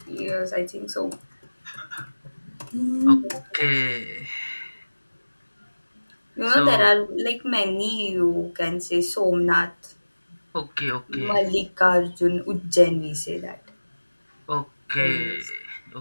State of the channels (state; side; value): inverted; both; correlation -1.00